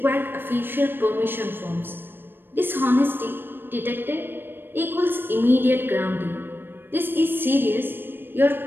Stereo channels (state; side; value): late; left; 0.098 ms